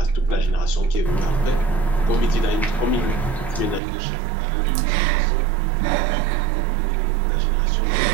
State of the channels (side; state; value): left; drops out; at 3.8 s